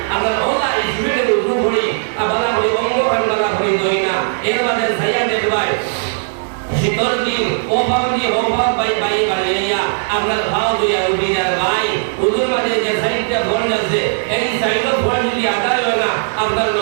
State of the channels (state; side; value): silent; left; digital silence